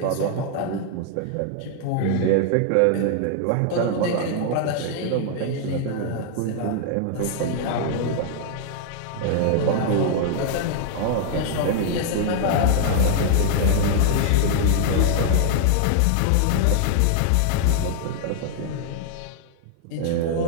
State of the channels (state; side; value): different; both; correlation -0.01